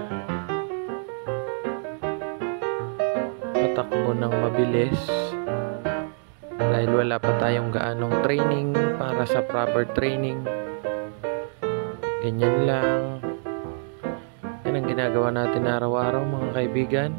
patakbo ng mabilis dahil wala pa tayong gaanong training para sa proper training. Ganyan lang. Yan ang ginagawa natin araw-araw mga kaibigan.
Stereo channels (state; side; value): silent; left; digital silence